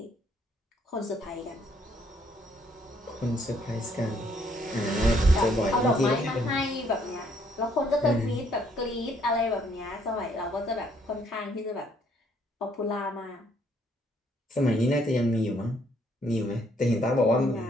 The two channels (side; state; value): both; normal; correlation 0.67